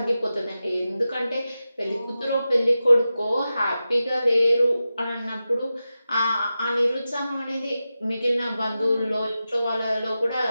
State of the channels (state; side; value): inverted; both; correlation -0.93